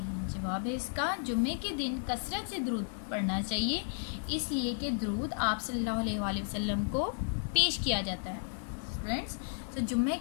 जवाब है इसका, जुम्मे के दिन कसरत से दरूद पढ़ना चाहिए, इसलिए कि दरूद आप सल्लल्लाहु अलैहि वसल्लम को पेश किया जाता है। फ्रेंड्स, तो जुम्मे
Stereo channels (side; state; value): right; silent; digital silence